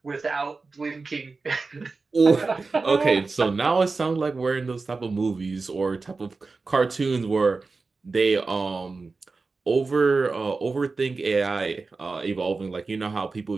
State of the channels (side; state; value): left; quieter; 4.0 dB